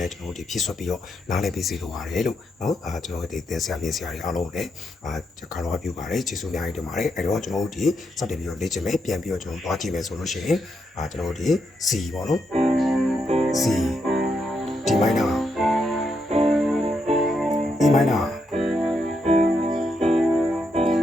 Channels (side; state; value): both; normal; correlation 0.80